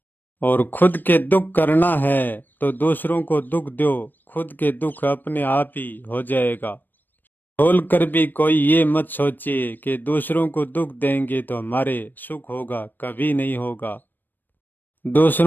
और खुद के दुख करना है तो दूसरों को दुख दो, खुद के दुख अपने आप ही हो जाएगा। बोल कर भी कोई ये मत सोचिए कि दूसरों को दुख देंगे तो हमारे सुख होगा, कभी नहीं होगा।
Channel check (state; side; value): late; right; 0.092 ms